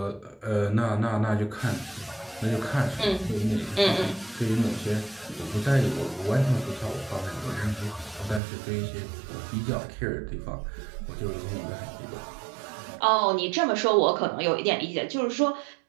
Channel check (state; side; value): drops out; left; at 8.4 s